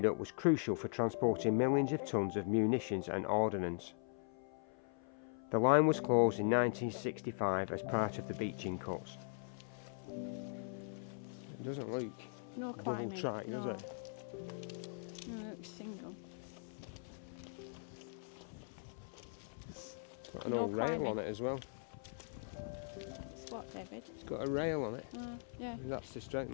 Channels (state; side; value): silent; right; 51 dB below the other